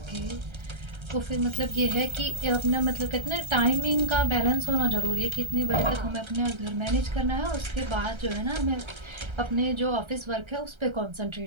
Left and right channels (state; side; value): late; left; 1.3 ms